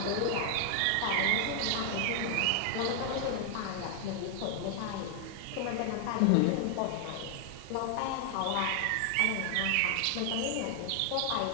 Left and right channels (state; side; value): different; both; correlation 0.00